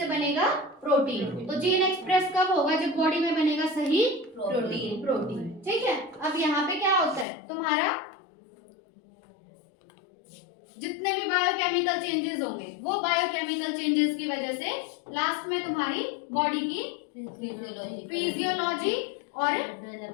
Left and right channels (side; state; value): right; drops out; at 7.2 s